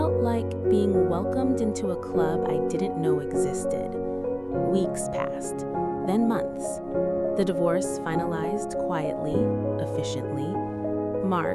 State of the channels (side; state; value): both; identical; correlation 1.00